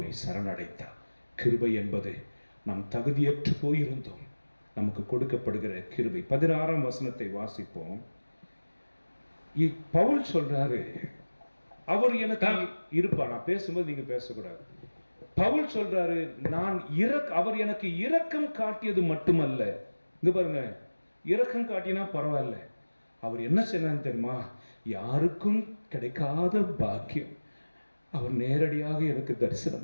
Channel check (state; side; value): inverted; both; correlation -1.00